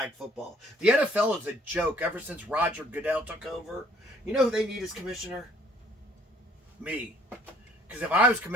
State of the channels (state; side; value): normal; both; correlation 0.60